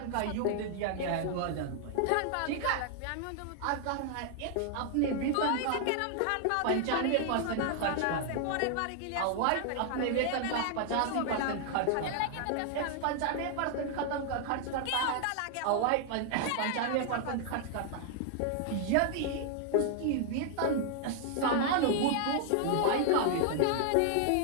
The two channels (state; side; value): different; both; correlation 0.00